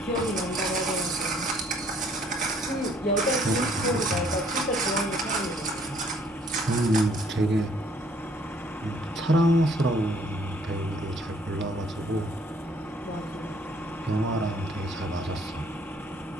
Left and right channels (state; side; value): normal; both; correlation 0.62